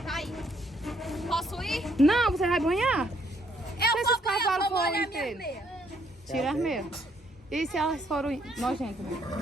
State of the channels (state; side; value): normal; both; correlation 0.69